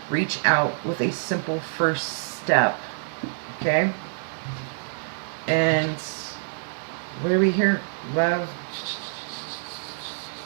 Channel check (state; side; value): silent; left; digital silence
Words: Reach out with a simple first step. Okay? And what are we here? Love.